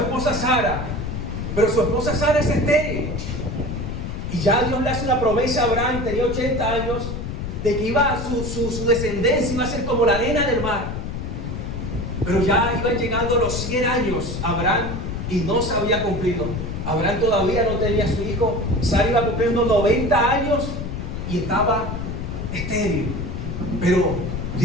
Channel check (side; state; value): left; noise; rumble, 5 dB below the sound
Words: Sara, pero su esposa Sara es estéril. Y ya Dios le hace una promesa a Abraham, tenía 80 años, de que su descendencia iba a ser como la arena del mar. Pero ya iban llegando los 100 años Abraham y no se había cumplido. Abraham todavía no tenía a su hijo. Sara iba cumpliendo 90 años y estaba estéril. Pero